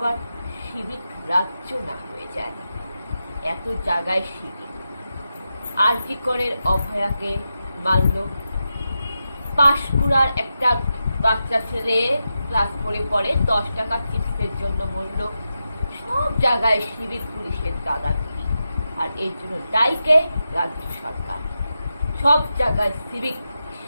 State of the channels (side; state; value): both; inverted; correlation -0.89